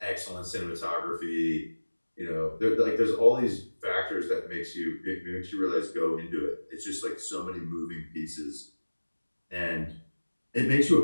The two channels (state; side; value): inverted; both; correlation -1.00